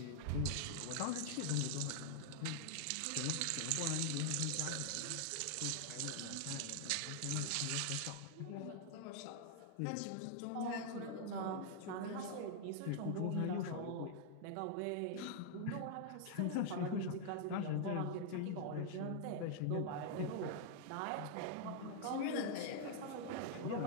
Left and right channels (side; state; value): both; different; correlation -0.01